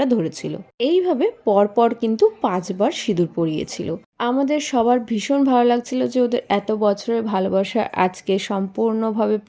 ধরেছিল। এইভাবে পরপর কিন্তু 5 বার সিঁদুর পরিয়েছিল। আমাদের সবার ভীষণ ভালো লাগছিল যে ওদের এত বছরের ভালোবাসা আজকে সম্পূর্ণভাবে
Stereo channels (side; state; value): both; identical; correlation 1.00